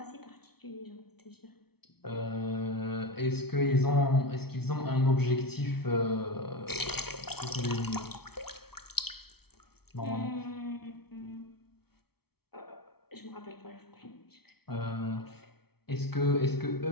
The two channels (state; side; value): late; right; 0.96 ms